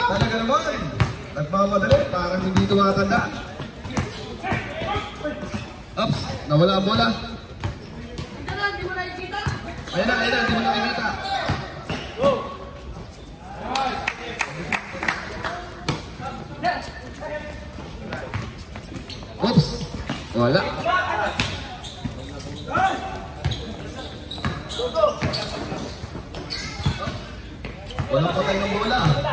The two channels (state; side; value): identical; both; correlation 1.00